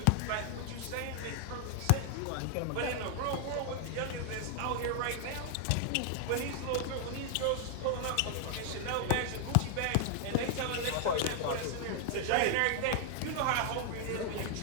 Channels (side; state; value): both; different; correlation 0.00